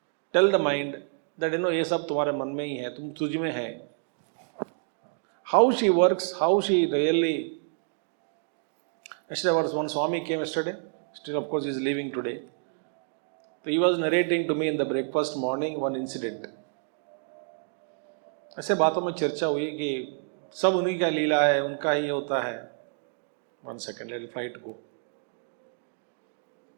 Tell the mind that ये सब तुम्हारे मन में ही है, तुम तुझ में है. How she works, how she really. Yesterday was one Swami came yesterday. Still, of course, he is leaving today. So he was narrating to me in the breakfast morning one incident. ऐसे बातों में चर्चा हुई कि सब उन्हीं का लीला है, उनका ही होता है. 1 second, let the flight go.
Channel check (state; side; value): silent; left; 59 dB below the other